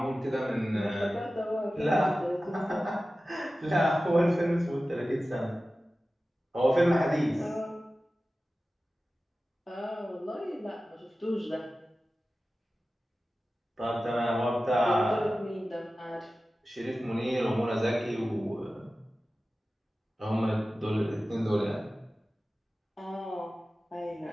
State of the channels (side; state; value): both; normal; correlation 0.95